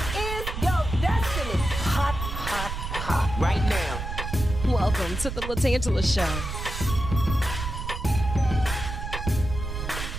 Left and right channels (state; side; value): noise; right; rumble, 6 dB below the sound